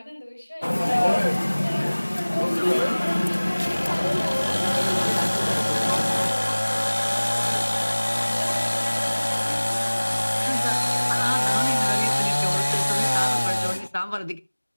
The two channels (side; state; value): both; inverted; correlation -1.00